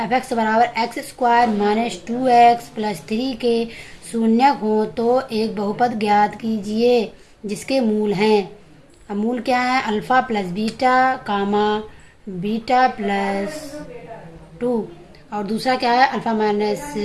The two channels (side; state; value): both; identical; correlation 1.00